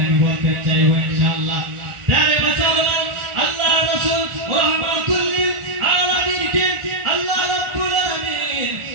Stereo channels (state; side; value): late; left; 1.4 ms